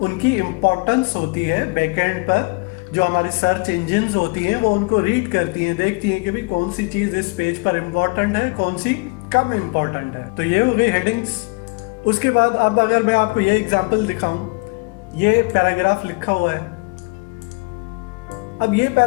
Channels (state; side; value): quieter; right; 29.6 dB